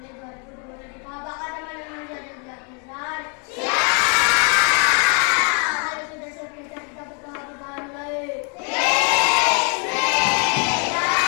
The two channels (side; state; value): right; quieter; 38.1 dB